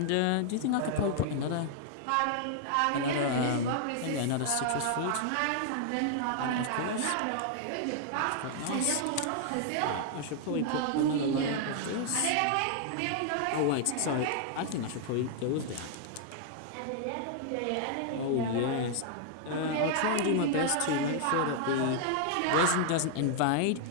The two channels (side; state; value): both; different; correlation -0.01